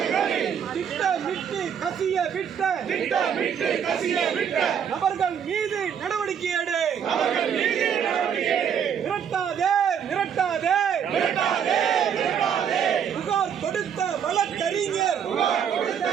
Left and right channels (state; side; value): quieter; left; 8.0 dB